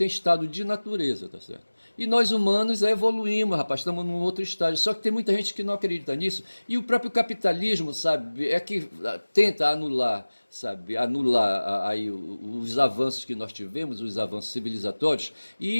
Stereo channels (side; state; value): both; inverted; correlation -1.00